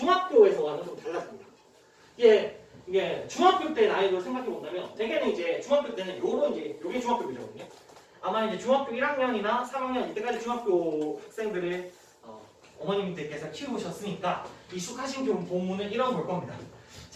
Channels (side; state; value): both; identical; correlation 1.00